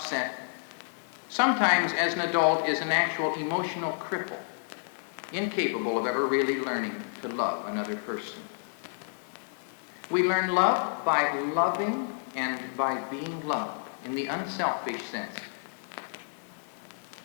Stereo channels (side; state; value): right; silent; 58 dB below the other